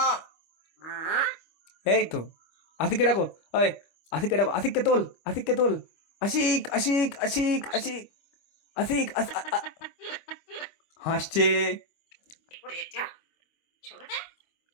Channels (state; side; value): late; right; 25 ms